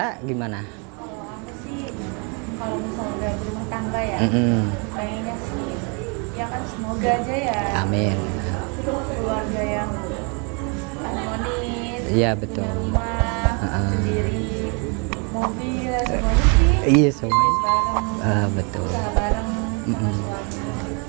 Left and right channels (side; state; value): left; quieter; 34.5 dB